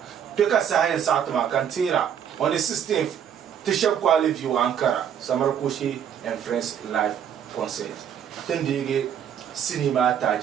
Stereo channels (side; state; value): left; quieter; 8.8 dB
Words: Peka science atma kantira on the 16th Tisha Kwali view Ankara Samarakoshi and Friends live concert then they cinema